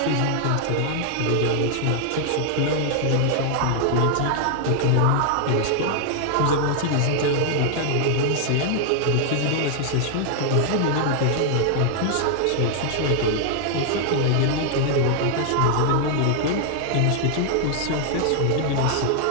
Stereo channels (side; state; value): both; different; correlation 0.00